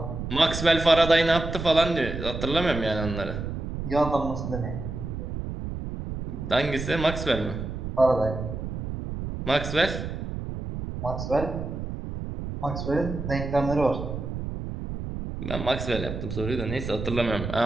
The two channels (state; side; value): noise; right; rumble, 6 dB below the sound